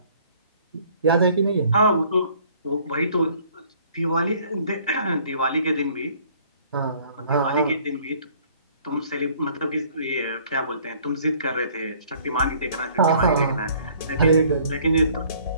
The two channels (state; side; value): inverted; both; correlation -0.57